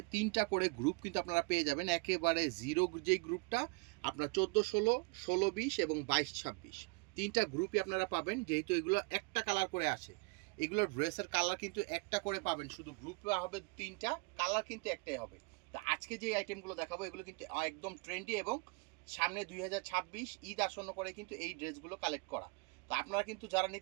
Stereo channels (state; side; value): quieter; left; 30.9 dB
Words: ৩টা করে গ্রুপ কিন্তু আপনারা পেয়ে যাবেন। একেবারে জিরো যে গ্রুপটা আপনার ১৪-১৬, ১৬-২০ এবং ২২-২৬ ৩টা গ্রুপই আপনারা পাবেন, যেহেতু এগুলো একটা কালার করে আসে। এগুলো ড্রেসের কালার কিন্তু একটা করে পাবেন, শুধু গ্রুপ হবে ৩টা, কালার কিন্তু একটাই হবে। তো আজকে যে আইটেমগুলো দেখাবো এগুলো কিন্তু একদম ট্রেন্ডি এবং সামনে ২০২৬ ঈদ আসন্ন করে কিন্তু এই ড্রেসগুলো কালেক্ট করা। তো আপনারা কিন্তু যারা